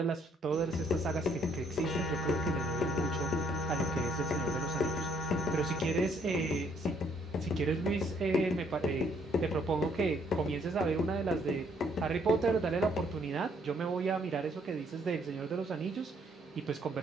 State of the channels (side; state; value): both; normal; correlation 0.67